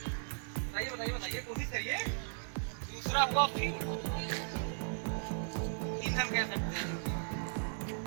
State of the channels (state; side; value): silent; left; digital silence